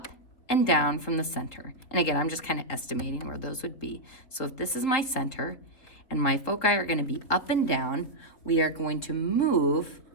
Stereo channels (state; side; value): late; right; 4.0 ms